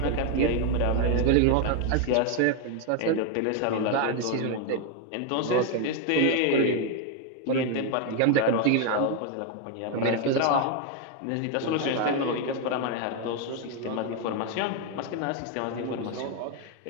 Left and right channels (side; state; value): both; different; correlation 0.01